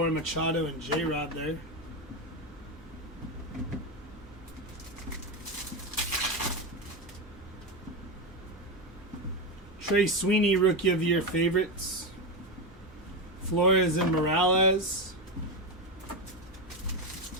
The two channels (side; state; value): both; normal; correlation 0.13